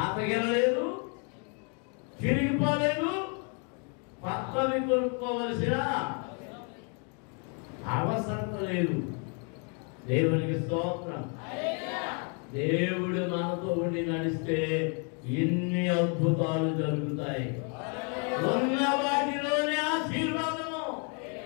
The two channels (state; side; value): quieter; right; 38.7 dB